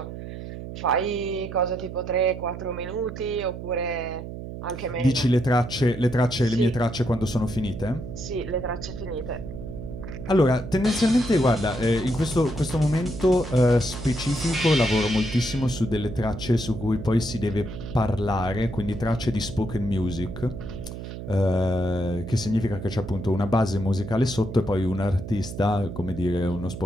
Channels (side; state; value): right; noise; hum, 9 dB below the sound